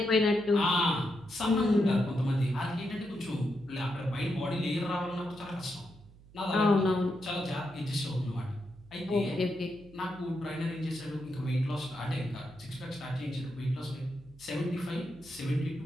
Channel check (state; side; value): noise; right; hum, 23 dB below the sound